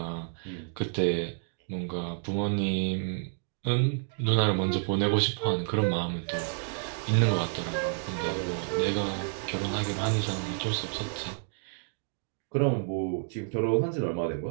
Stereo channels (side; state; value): left; silent; digital silence